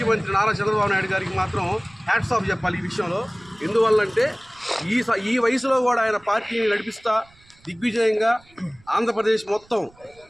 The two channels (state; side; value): noise; right; rumble, 29 dB below the sound